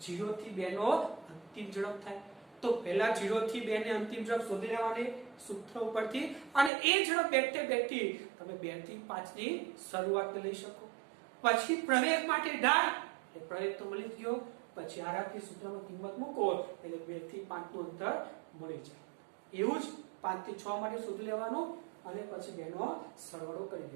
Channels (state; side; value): drops out; left; at 6.7 s